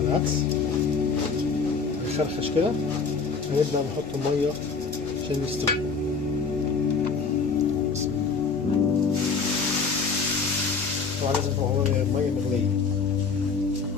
العدس نشرخش كده، هنبدأ نحط المية عشان يستوي. طبعا لازم تبقى المية مغلية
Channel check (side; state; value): right; quieter; 5.0 dB